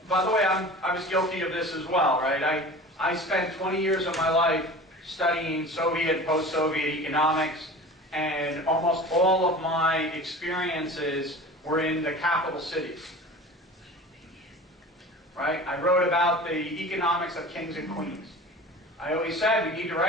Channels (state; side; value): normal; both; correlation 0.37